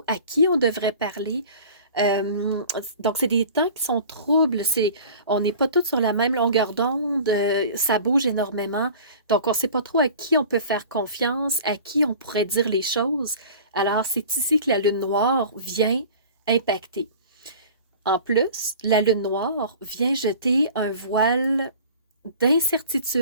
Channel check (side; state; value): both; inverted; correlation -0.43